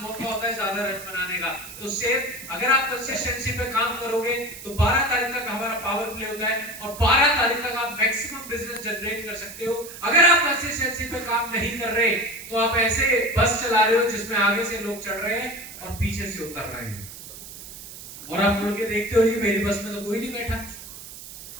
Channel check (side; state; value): right; noise; hiss, 14 dB below the sound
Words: मौका होता है ज्यादा रन बनाने का। तो सेम अगर आप कंसिस्टेंसी पे काम करोगे तो 12 तारीख तक हमारा पावर प्ले होता है और 12 तारीख तक आप मैक्सिमम बिजनेस जनरेट कर सकते हो। अगर आप कंसिस्टेंसी काम नहीं कर रहे तो आप ऐसे बस चला रहे हो जिसमें आगे से लोग चढ़ रहे हैं और पीछे से उतर रहे हैं, और आप मुड़ के देखते हो जी मेरी बस में तो कोई नहीं बैठा,